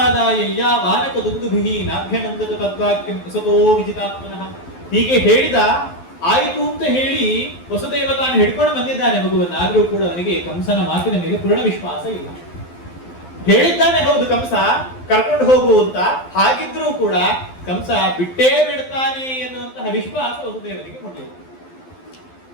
ವಾನಕ ದುಂದುಭಿಹಿ ನಾಭ್ಯನಂದತ ತದ್ವಾಕ್ಯಂ ವಸತೋ ವಿಜಿತಾತ್ಮನಃ. ಹೀಗೆ ಹೇಳಿದ, ಆಯಿತು ಅಂತ ಹೇಳಿ ವಸುದೇವ ತಾನು ಹಿಡ್ಕೊಂಡು ಬಂದಿದ್ದಾನೆ ಮಗುವನ್ನು. ಆದ್ರೂ ಕೂಡ ಅವನಿಗೆ ಕಂಸನ ಮಾತಿನ ಮೇಲೆ ಪೂರ್ಣ ವಿಶ್ವಾಸ ಇಲ್ಲ. ಹೇಳಿದ್ದಾನೆ ಹೌದು ಕಂಸ ಕರ್ಕೊಂಡು ಹೋಗು ಅಂತ, ಹಾಗಿದ್ರೂ ಕೂಡ ಕಂಸ ಬಿಟ್ಟೇ ಬಿಡ್ತಾನೆ ಎನ್ನುವಂತಹ ವಿಶ್ವಾಸ ವಸುದೇವನಿಗೆ ಹೊಂದಿಲ್ಲ.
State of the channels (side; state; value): right; late; 12 ms